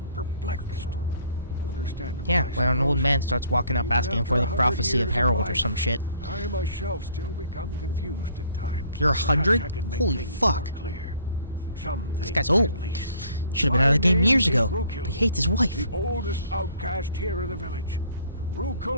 perplexed. Understandable. Yeah, when an old man starts walking up asking for the prophecy of Harold or some shit. I myself still become confused at times. You're 100? Holy fuck. This guy's old. Should have been out of the game years ago. But he hates his wife. The oldest outcast here in the village.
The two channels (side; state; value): both; inverted; correlation -0.59